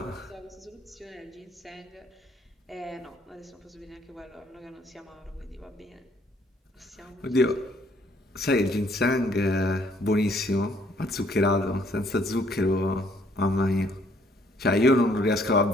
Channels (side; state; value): both; normal; correlation 0.64